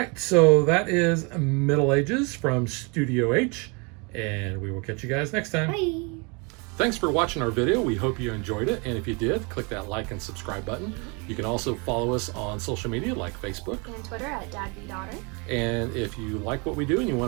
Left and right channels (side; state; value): left; quieter; 31.3 dB